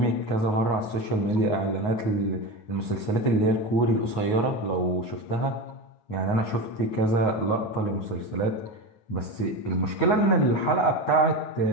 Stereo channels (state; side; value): late; right; 9.4 ms